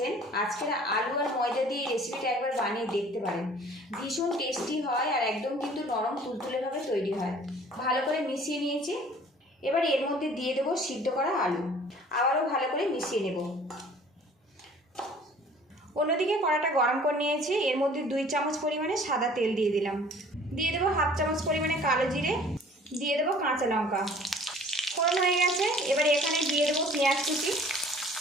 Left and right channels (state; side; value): normal; both; correlation 0.51